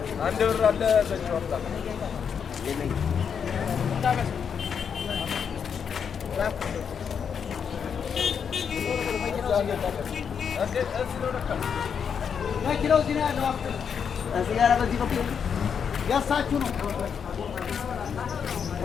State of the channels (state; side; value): quieter; right; 7.1 dB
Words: አንድ ብር አለ በዚህ ወጣ መኪናው እዚህ ነው ያለው። ሲጋራ በዚህ በኩል ያሳችሁ ነው